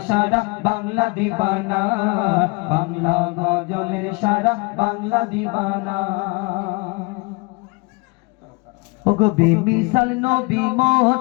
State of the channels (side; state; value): right; quieter; 27.7 dB